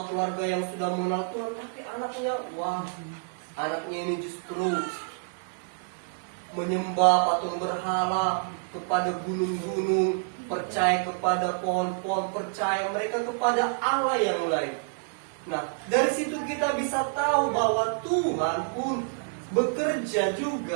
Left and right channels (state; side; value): silent; left; digital silence